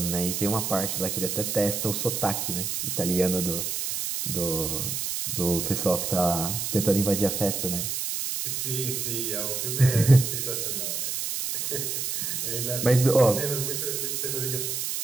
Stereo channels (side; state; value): right; noise; hiss, 2 dB below the sound